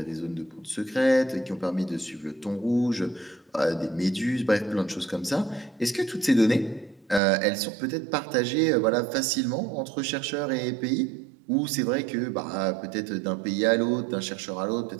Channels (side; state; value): left; drops out; at 7.2 s